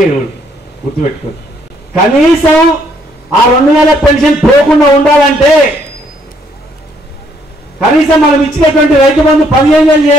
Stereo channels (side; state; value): both; normal; correlation 0.68